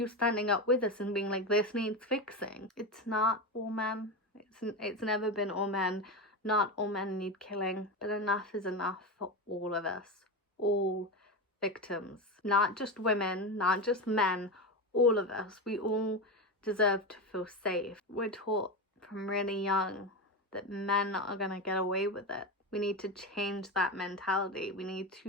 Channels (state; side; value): normal; both; correlation 0.18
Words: standing up with us and being like, this needs fixing? It's not all men. It's never been all men, Not all men need killing, but enough is enough for all of us. All victims. Not just women, not just men, all of us. We all deserve to feel safe. We're taught from really young that men are gonna get away with it. We need to change that mentality. We need